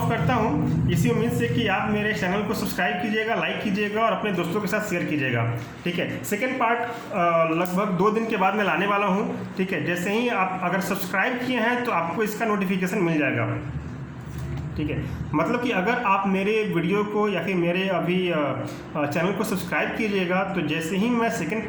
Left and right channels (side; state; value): both; identical; correlation 1.00